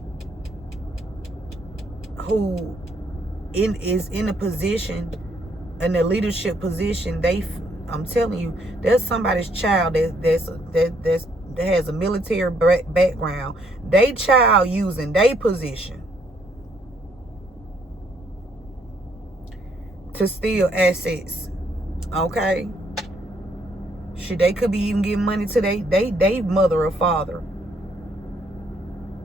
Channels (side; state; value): both; normal; correlation 0.70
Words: who is in a position, in a leadership position, I'm telling you, there's somebody's child that has a military background. They child using their position to steal assets. Okay, shit, they could be even giving money to they mother or father.